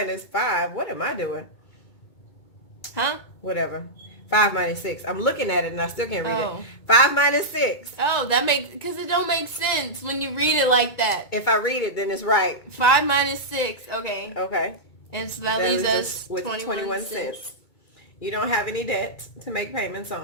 5. What am I doing? Huh? Whatever. 5 minus 6. I'm looking at it and I still can't read Oh. it. 5 minus 6. Oh, that makes, because it don't make sense when you read it like that. If I read it, then it's right. 5 minus 6. Okay. Okay. And so that leaves us with 21 cents. You don't have any debt to make payments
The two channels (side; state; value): right; late; 2.2 ms